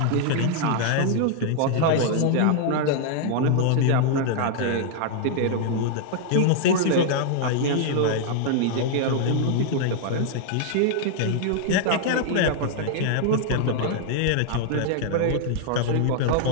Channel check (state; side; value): different; both; correlation -0.01